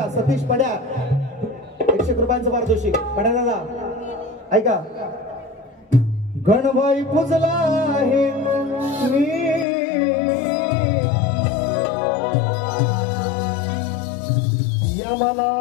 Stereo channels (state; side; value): drops out; right; at 9.7 s